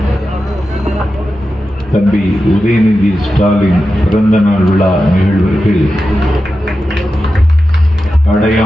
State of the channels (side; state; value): both; normal; correlation 0.91